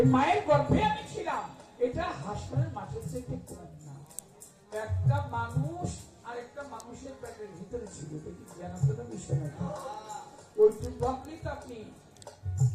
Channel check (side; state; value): both; identical; correlation 1.00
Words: মায়ের গর্ভে আমি ছিলাম, এটা হাসপাতালের মাঠের থেকে কম না। একটা মানুষ আর একটা মানুষের পেটের ভিতরে ছিল, জানাতে বিষয় না। ওইটুকু ভাবলেই তো আপনি